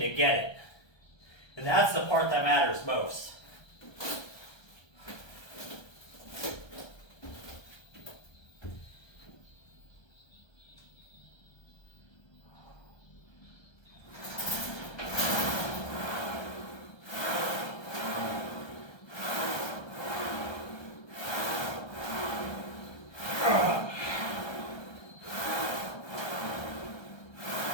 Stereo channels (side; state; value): right; late; 1.3 ms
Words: get it. And that's the part that matters most.